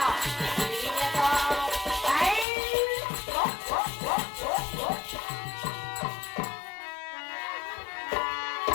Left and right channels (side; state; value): right; drops out; at 2.5 s